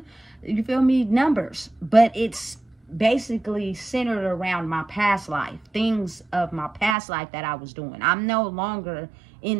you feel me, numbers, but it's basically centered around my past life, things of my past life that I was doing. I'm no longer in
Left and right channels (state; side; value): drops out; left; at 7.0 s